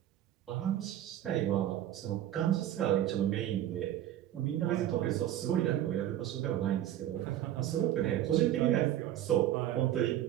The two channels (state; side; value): quieter; left; 12.2 dB